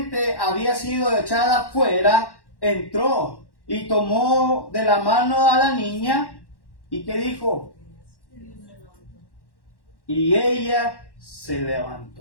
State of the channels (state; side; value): late; right; 1.1 ms